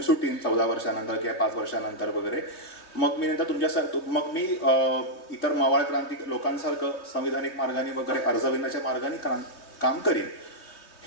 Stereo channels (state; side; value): late; right; 3.0 ms